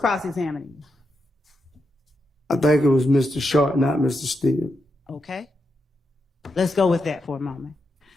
you? I think it was Mr. Short, not Mr. Steele. Okay. Let's go with that for a moment.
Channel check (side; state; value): both; normal; correlation 0.85